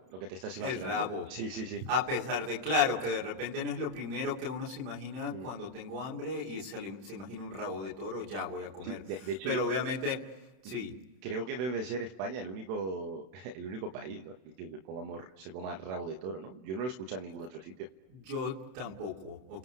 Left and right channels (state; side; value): late; left; 31 ms